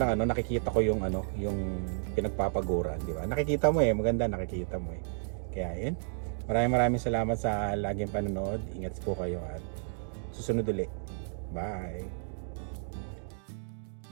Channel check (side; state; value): left; silent; digital silence